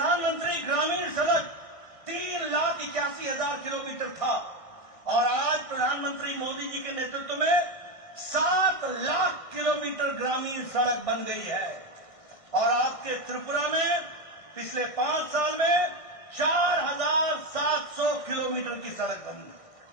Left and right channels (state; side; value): late; right; 1.6 ms